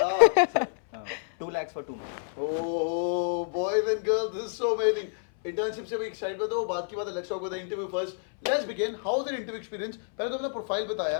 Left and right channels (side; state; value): right; silent; 59 dB below the other